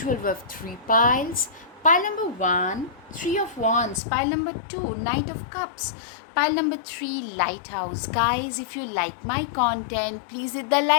we have three piles. Pile number one, Three of Wands. Pile number two, Knight of Cups. Pile number three, Lighthouse. Guys, if you like my content, please hit the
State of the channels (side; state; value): right; drops out; at 4.0 s